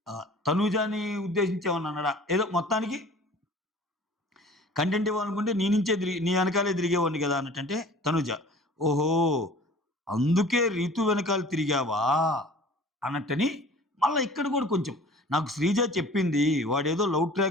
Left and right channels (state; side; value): normal; both; correlation 0.46